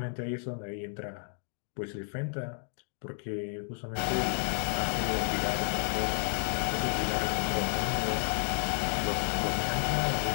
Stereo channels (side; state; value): right; silent; 57 dB below the other